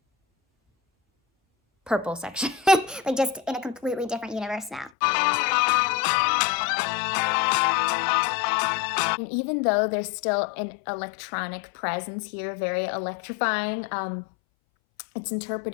purple section. Like just in a completely different universe now. And even though there's still an electronic presence here, very electrifying, it's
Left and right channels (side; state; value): right; drops out; at 4.9 s